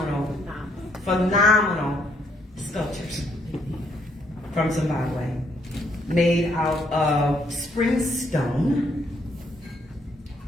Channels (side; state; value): both; normal; correlation 0.70